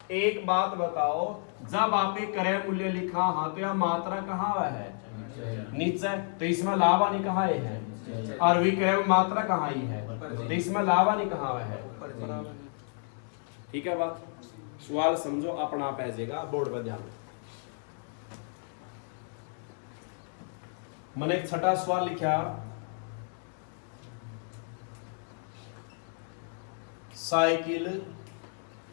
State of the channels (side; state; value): right; silent; 56 dB below the other